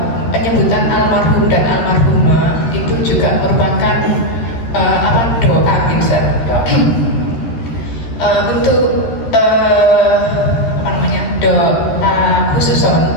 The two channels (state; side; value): late; right; 13 ms